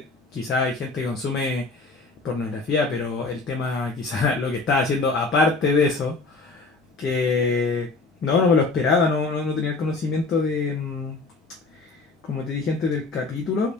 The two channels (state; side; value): quieter; right; 3.7 dB